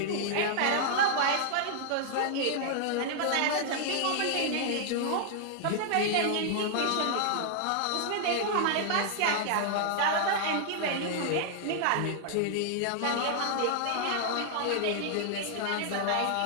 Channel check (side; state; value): both; different; correlation -0.01